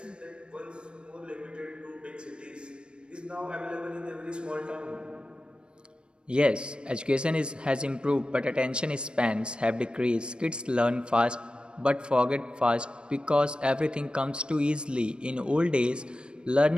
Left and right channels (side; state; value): left; late; 0.055 ms